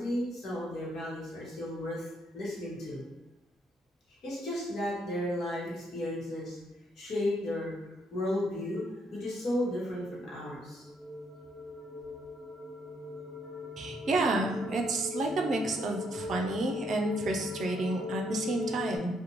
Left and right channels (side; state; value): both; normal; correlation 0.73